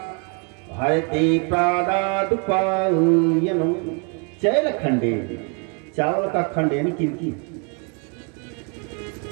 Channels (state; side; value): quieter; left; 34.5 dB